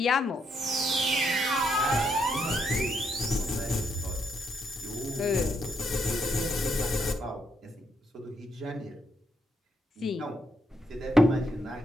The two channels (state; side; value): normal; both; correlation 0.77